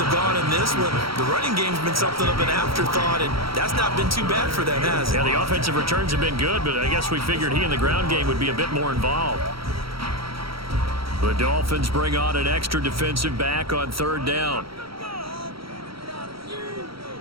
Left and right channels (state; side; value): late; left; 0.75 ms